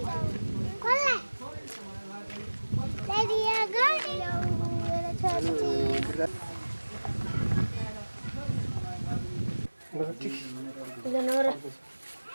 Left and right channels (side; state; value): both; inverted; correlation -1.00